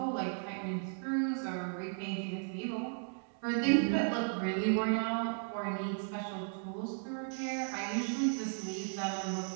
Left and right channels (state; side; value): silent; left; 54 dB below the other